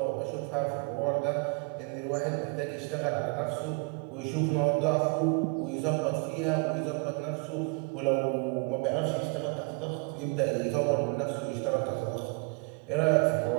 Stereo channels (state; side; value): quieter; left; 33.1 dB